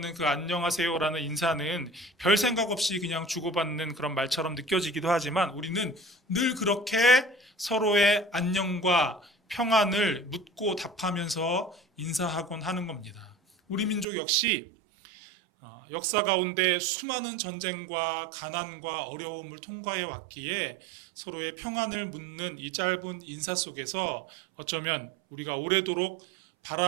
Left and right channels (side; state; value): left; drops out; at 14.1 s